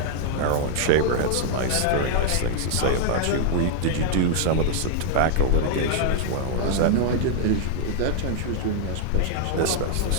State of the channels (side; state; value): both; different; correlation 0.00